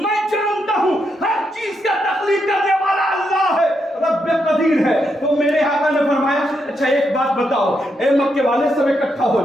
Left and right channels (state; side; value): normal; both; correlation 0.81